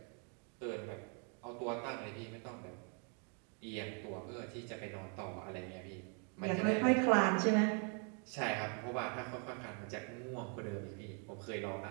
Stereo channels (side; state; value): left; quieter; 38.4 dB